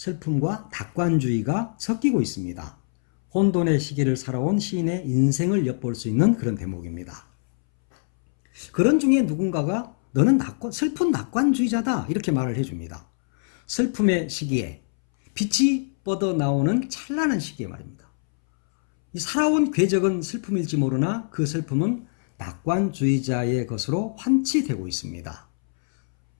낙관주의가 섞이고 있습니다. 혼돈의 시기를 살아온 시인의 인생을 엿볼 수 있는 그런 대목입니다. 그런 중에 누군가가 너는 슬픈 낙관주의자다 이렇게 말을 해줍니다. 슬픔의 시기에 빛이 뻗어나오는 찬란한 시기에 말입니다. 이 살아온 궤적은 슬픔일지 모르나 그 슬픔은 낙관주의자의 것으로 환치되고 있습니다.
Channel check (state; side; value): silent; right; 63 dB below the other